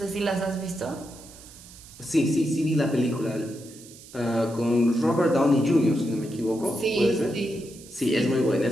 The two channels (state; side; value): noise; right; hiss, 19 dB below the sound